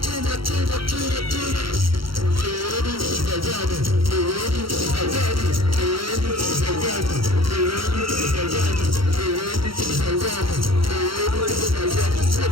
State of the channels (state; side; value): late; left; 0.74 ms